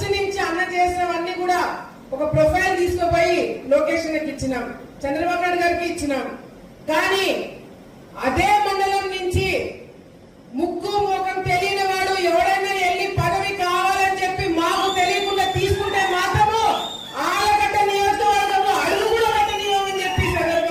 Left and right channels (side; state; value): both; identical; correlation 1.00